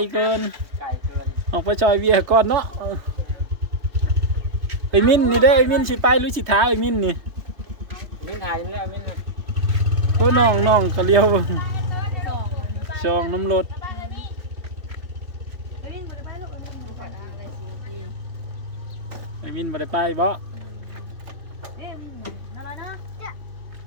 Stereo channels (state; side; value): late; left; 3.2 ms